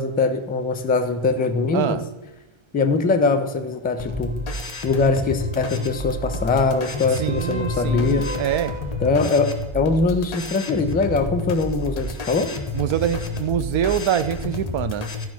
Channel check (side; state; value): left; late; 1.3 ms